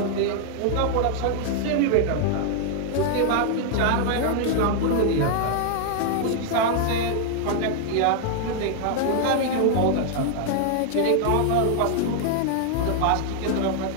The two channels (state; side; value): different; both; correlation 0.00